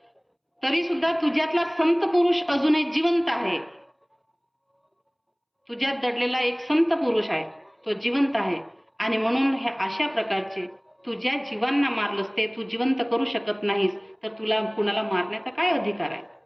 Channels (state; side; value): identical; both; correlation 1.00